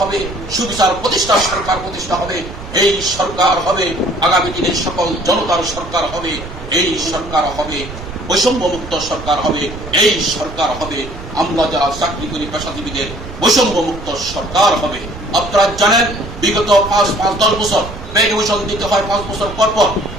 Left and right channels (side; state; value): right; noise; rumble, 12 dB below the sound